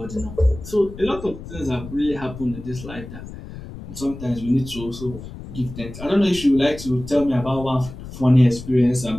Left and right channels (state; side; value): noise; left; rumble, 13 dB below the sound